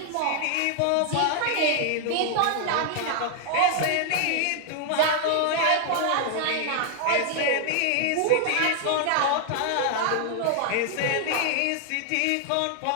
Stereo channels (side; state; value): both; different; correlation 0.00